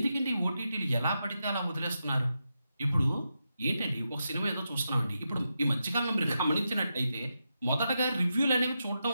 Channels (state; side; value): inverted; both; correlation -0.87